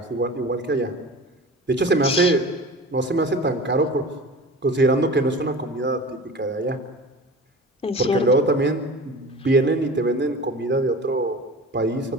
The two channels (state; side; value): normal; both; correlation 0.37